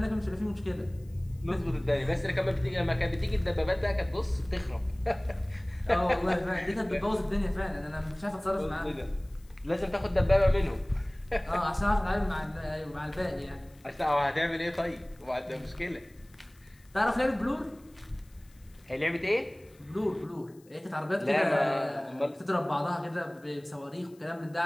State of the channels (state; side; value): noise; left; hiss, 30 dB below the sound